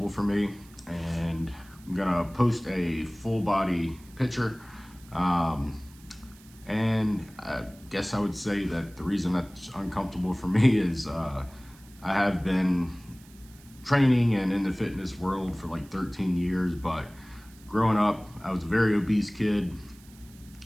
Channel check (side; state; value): right; noise; hiss, 25 dB below the sound